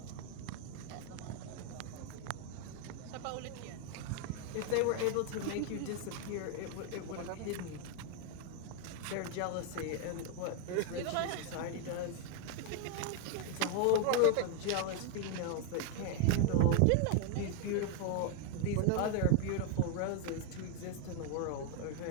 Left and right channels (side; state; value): both; different; correlation 0.00